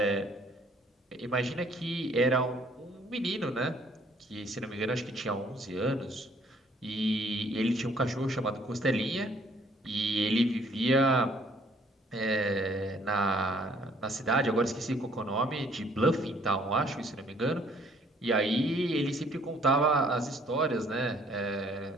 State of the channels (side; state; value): both; normal; correlation 0.61